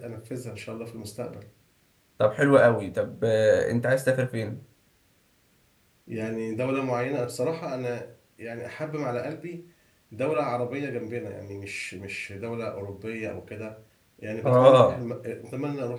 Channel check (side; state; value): both; identical; correlation 1.00